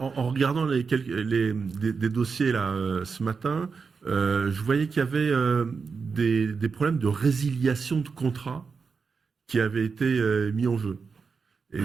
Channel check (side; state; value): left; quieter; 5.2 dB